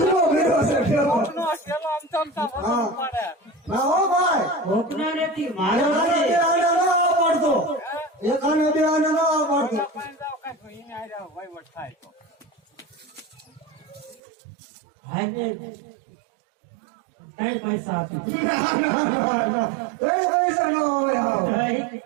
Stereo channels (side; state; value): left; drops out; at 14.2 s